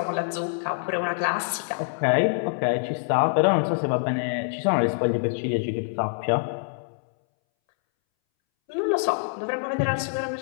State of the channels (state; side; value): silent; right; 61 dB below the other